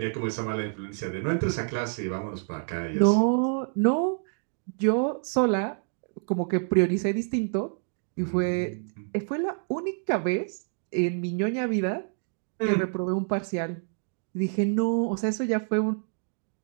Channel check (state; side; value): silent; left; 59 dB below the other